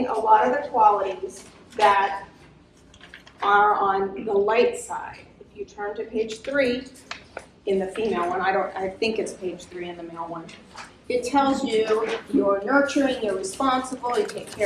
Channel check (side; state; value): both; identical; correlation 1.00